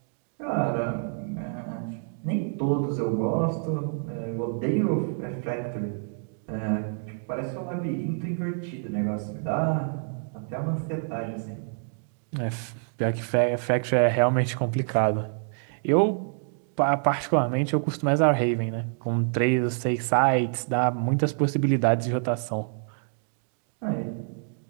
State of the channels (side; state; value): left; silent; 60 dB below the other